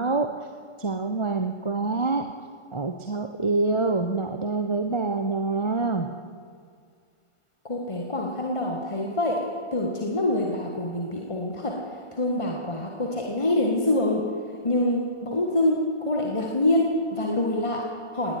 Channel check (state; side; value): late; right; 1.4 ms